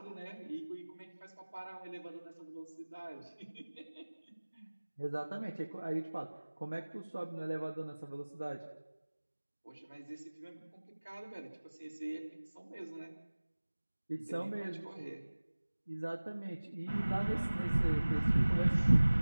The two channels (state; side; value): inverted; both; correlation -1.00